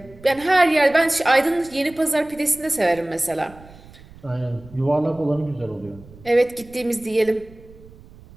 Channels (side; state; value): right; noise; rumble, 22 dB below the sound